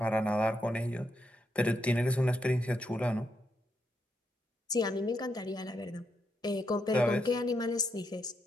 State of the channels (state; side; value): normal; both; correlation 0.79